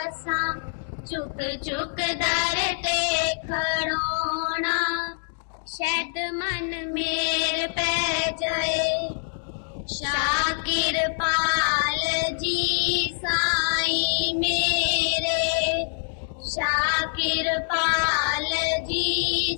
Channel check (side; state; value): right; silent; digital silence